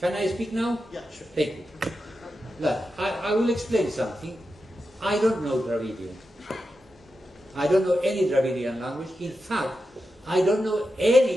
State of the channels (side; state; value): both; normal; correlation 0.89